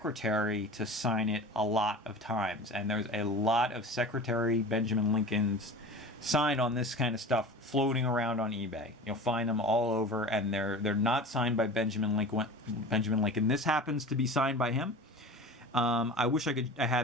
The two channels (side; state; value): both; normal; correlation 0.35